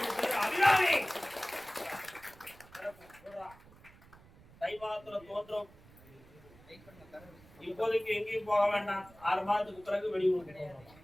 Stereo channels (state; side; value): noise; right; rumble, 24 dB below the sound